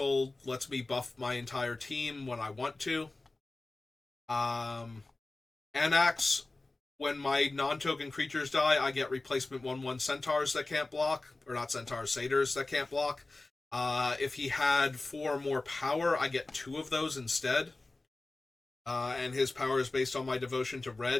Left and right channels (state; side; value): quieter; right; 3.1 dB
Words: lets me buff my entire team when I want to. Anax, when my non-token creatures die, I get replacement 1/1 centaurs that can't block. Or not centaurs, satyrs that can't block. If he had 4 more power, I get 2 of those instead. And his power is based on my devotion to